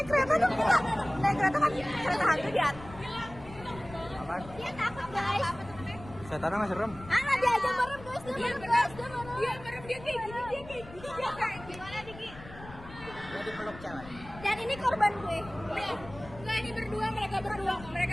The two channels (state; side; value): noise; left; rumble, 16 dB below the sound